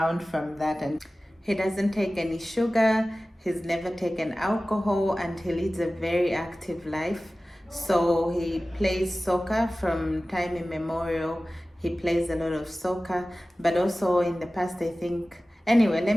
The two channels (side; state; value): both; normal; correlation 0.96